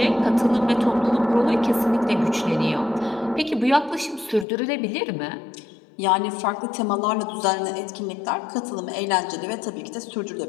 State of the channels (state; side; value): drops out; right; at 4.5 s